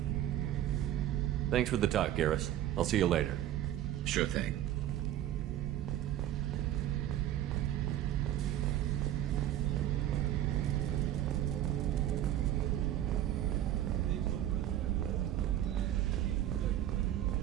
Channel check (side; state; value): left; quieter; 12.3 dB